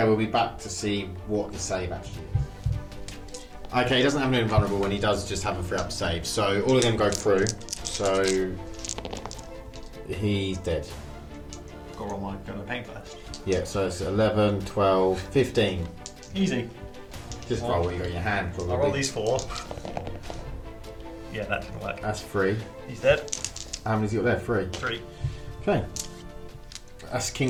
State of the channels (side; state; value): both; identical; correlation 1.00